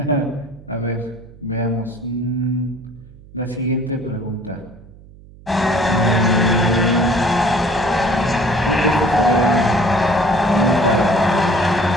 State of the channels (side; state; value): right; noise; hum, 22 dB below the sound